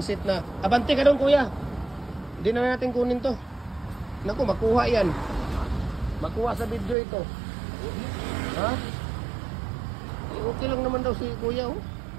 seat na. Abante ka doon kuya. Hindi na natin kunin to. Naku, makuha yan. Makuha sa video ito. Ha? Okay lang naman daw si kuya oh.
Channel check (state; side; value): drops out; left; at 7.0 s